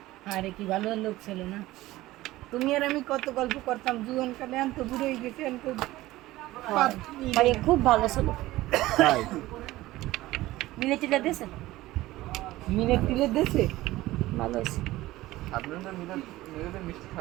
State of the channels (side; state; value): left; quieter; 17.3 dB